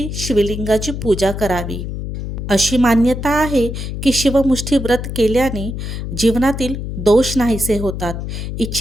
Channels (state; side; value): noise; left; hum, 6 dB below the sound